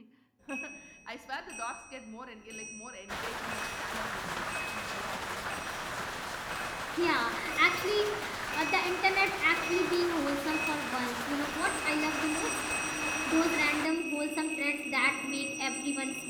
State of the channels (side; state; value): both; identical; correlation 1.00